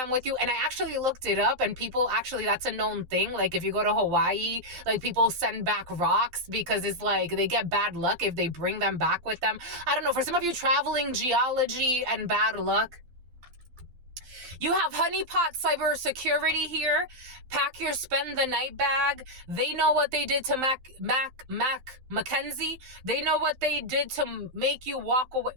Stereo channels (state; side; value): late; left; 12 ms